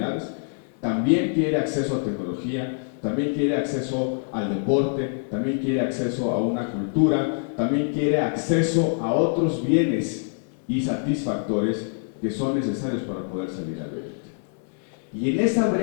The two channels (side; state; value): right; silent; 62 dB below the other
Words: también quiere acceso a tecnología, también quiere acceso al deporte, también quiere acceso a una cultura, también quiere acceso a otros bienes y satisfactores que son necesarios para poder salir adelante. Y en esa